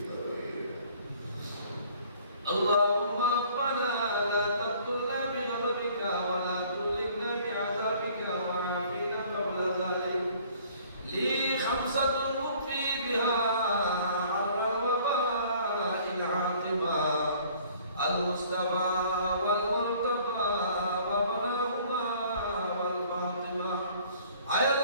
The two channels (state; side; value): inverted; both; correlation -0.56